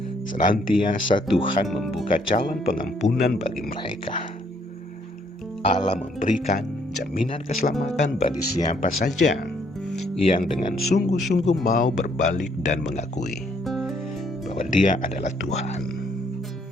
senantiasa Tuhan membuka jalan pengampunan bagi mereka. Allah memberikan jaminan keselamatan bagi siapa saja yang dengan sungguh-sungguh mau berbalik dan mengakui bahwa Dia adalah Tuhan.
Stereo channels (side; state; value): both; normal; correlation 0.68